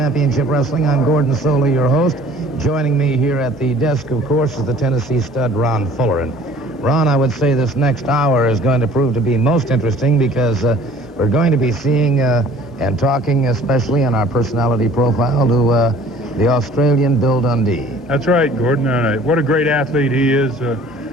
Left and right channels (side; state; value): both; normal; correlation 0.51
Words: Wrestling. I'm Gordon Solie, your host. Joining me here at the desk, of course, is the Tennessee stud, Ron Fuller. And Ron, I would say this next hour is going to prove to be most interesting because we're going to be seeing and talking, especially on our personality profile, to the Australian Bill Dundee. That's right, Gordon. What a great athlete he is.